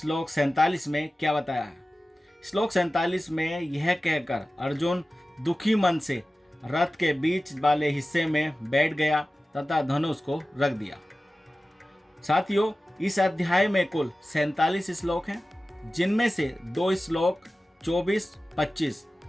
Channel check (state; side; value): normal; both; correlation 0.96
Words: 47 में क्या बताया है? श्लोक 47 में यह कहकर अर्जुन दुखी मन से रथ के बीच वाले हिस्से में बैठ गया तथा धनुष को रख दिया। साथियों, इस अध्याय में कुल 47 श्लोक हैं, जिनमें से 2 श्लोक 24-25